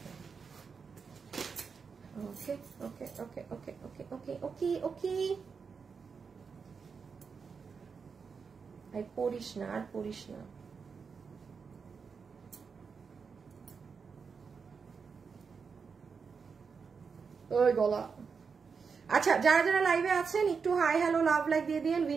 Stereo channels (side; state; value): left; quieter; 5.6 dB